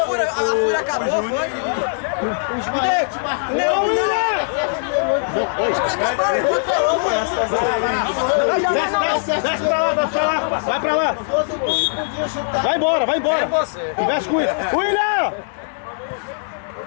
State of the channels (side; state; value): right; silent; digital silence